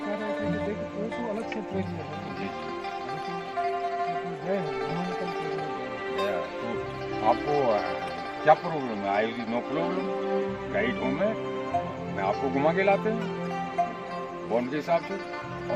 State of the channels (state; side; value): identical; both; correlation 1.00